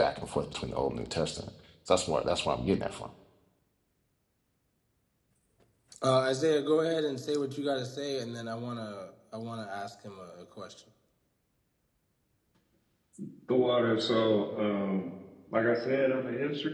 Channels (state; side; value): identical; both; correlation 1.00